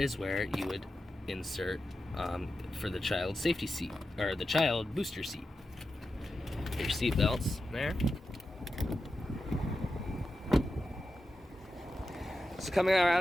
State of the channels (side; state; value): both; normal; correlation 0.91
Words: where you would insert for the child safety seat, or the child booster seat. Your seat belts there. So coming